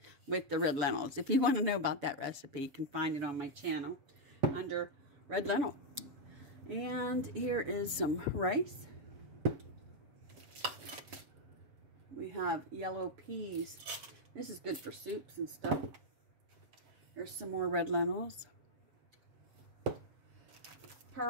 with the red lentils. If you want to know about that recipe, you can find it on my channel under red lentil. And here is some rice. We have yellow peas. This is good for soups and stuff. Here's some more red lentils.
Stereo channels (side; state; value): left; late; 7.0 ms